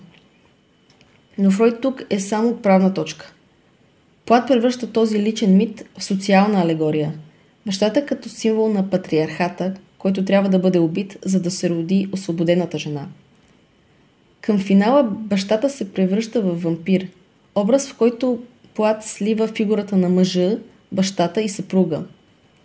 Но Фройд тук е само отправна точка. Плат превръща този личен мит в социална алегория. Бащата като символ на патриархата, който трябва да бъде убит, за да се роди освободената жена. Към финала бащата се превръща в вампир, образ в който Плат слива фигурата на мъжа, бащата и съпруга.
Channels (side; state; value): both; identical; correlation 1.00